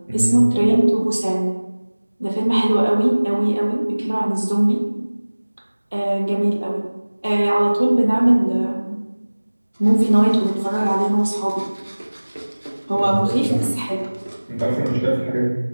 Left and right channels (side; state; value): both; inverted; correlation -1.00